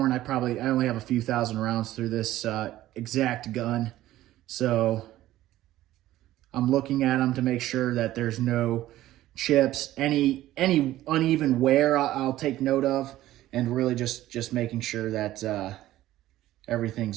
I only have a few thousand rounds through this exact gun. So I'm looking at them to make sure that there's no chips, any uneven wear I'll take note of, and really just making sure that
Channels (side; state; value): left; quieter; 14.8 dB